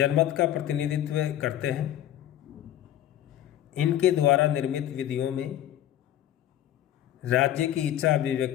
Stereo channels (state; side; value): quieter; right; 12.1 dB